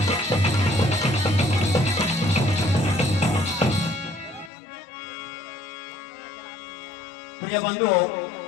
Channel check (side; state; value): right; drops out; at 4.5 s